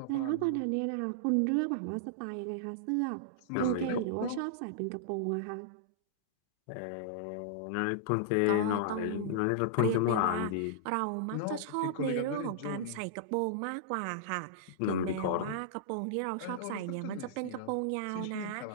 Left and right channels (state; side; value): different; both; correlation -0.02